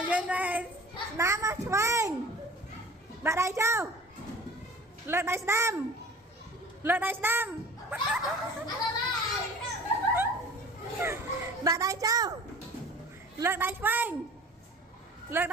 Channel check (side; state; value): both; normal; correlation 0.43